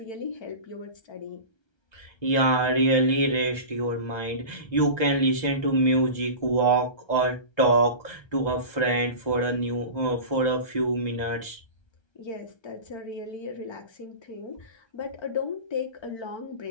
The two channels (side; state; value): right; late; 1.3 ms